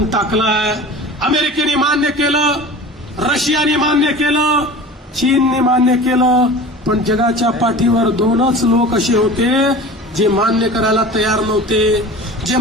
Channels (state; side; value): normal; both; correlation 0.37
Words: टाकलाय, अमेरिकेने मान्य केलं, रशियाने मान्य केलं, चीनने मान्य केलं, पण जगाच्या पाठीवर 2च लोक असे होते जे मान्य करायला तयार नव्हते, जे